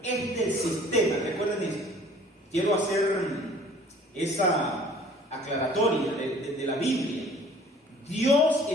es del sistema. Recuerden esto. Quiero hacer esa aclaratoria de la Biblia. Dios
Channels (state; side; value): normal; both; correlation 0.52